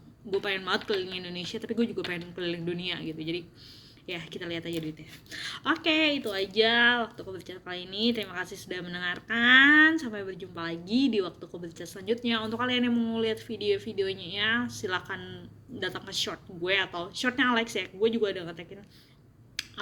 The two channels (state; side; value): identical; both; correlation 1.00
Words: banget keliling Indonesia, tapi gue juga pengen keliling dunia gitu. Jadi ya kita lihat aja duitnya. Oke, itu aja waktu Kau Berbicara kali ini. Terima kasih sudah mendengarkan. Sampai berjumpa lagi di waktu Kau Berbicara selanjutnya. Untuk kalian yang mau lihat video-videonya ya, silakan datang ke short gue atau shortnya Alex ya. Gue juga udah ngetekin